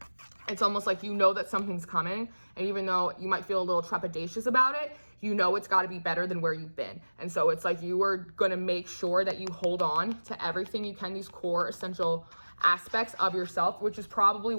It's almost like you know that something's coming, and even though you might feel a little trepidatious about it, you know it's got to be better than where you've been. And so it's like you are going to make sure that you hold on to everything you can, these core essential aspects of yourself, which is probably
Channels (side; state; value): both; inverted; correlation -1.00